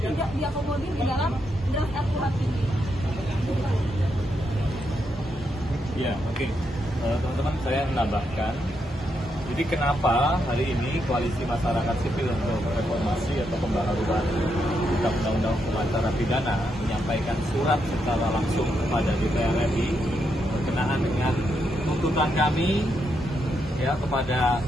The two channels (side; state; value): both; normal; correlation 0.81